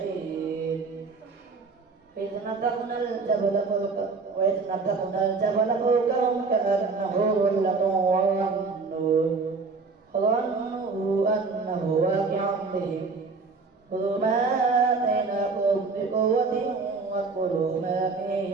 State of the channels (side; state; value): left; quieter; 4.4 dB